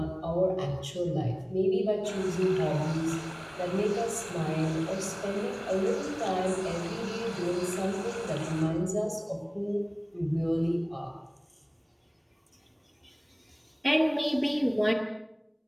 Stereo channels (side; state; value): both; identical; correlation 1.00